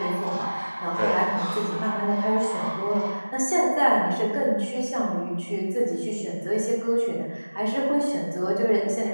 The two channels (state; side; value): inverted; both; correlation -1.00